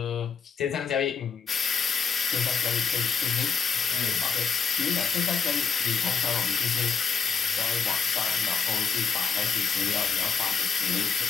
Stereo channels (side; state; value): right; quieter; 6.1 dB